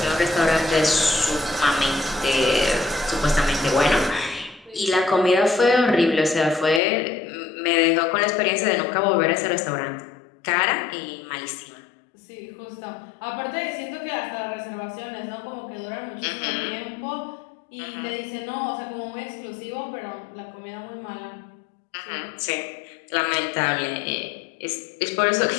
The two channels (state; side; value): drops out; right; at 6.8 s